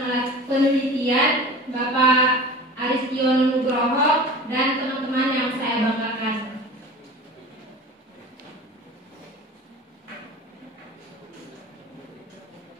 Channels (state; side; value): normal; both; correlation 0.38